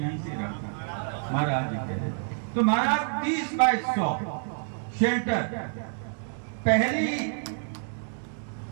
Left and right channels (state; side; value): silent; left; 58 dB below the other